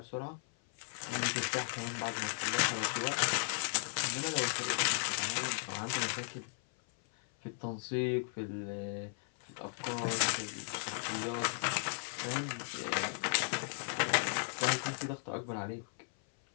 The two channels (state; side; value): silent; right; 54 dB below the other